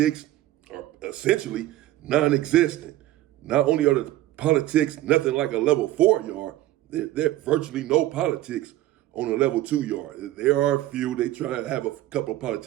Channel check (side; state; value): left; quieter; 14.8 dB